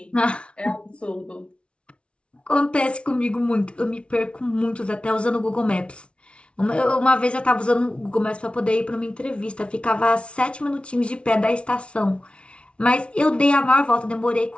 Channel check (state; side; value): late; right; 0.059 ms